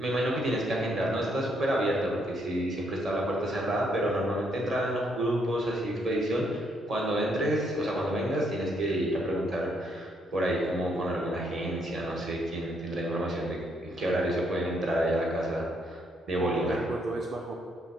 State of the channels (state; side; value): normal; both; correlation 0.73